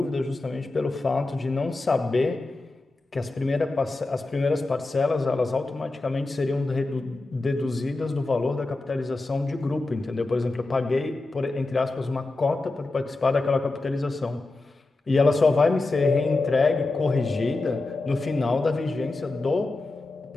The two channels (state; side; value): quieter; right; 3.1 dB